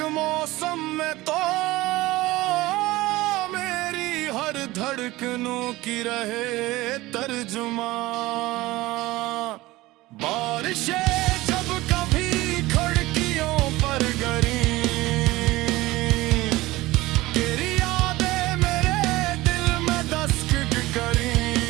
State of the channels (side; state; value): left; quieter; 19.0 dB